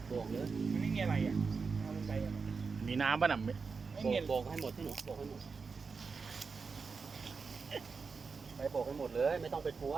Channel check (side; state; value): left; quieter; 4.9 dB